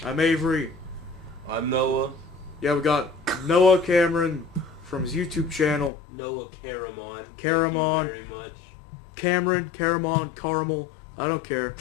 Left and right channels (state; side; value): drops out; right; at 5.9 s